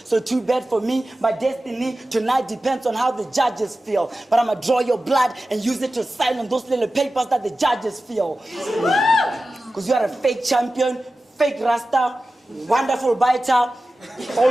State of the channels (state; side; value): normal; both; correlation 0.95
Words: So too bad for me, my destiny tonight depends on how the judges feel. But I'ma draw your blood and use it to sign on those little papers that the judges feel. Because you are a fake champion, fake rasta, wonderful biter,